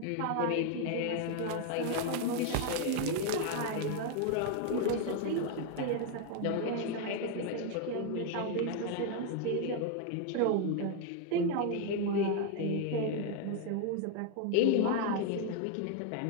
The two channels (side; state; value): both; different; correlation 0.00